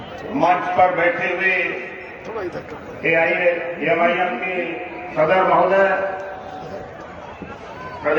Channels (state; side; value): identical; both; correlation 1.00